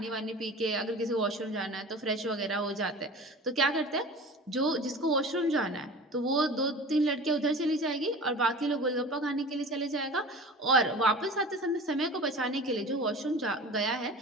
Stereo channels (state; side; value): normal; both; correlation 0.38